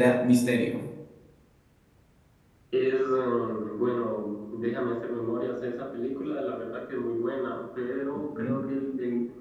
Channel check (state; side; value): identical; both; correlation 1.00